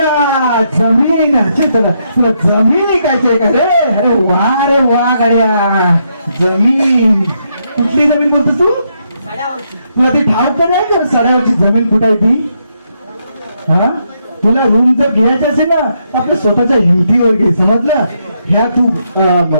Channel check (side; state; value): both; inverted; correlation -0.78